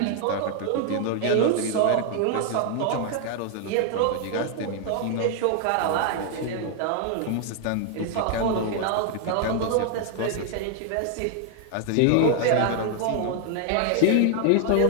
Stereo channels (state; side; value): different; both; correlation 0.00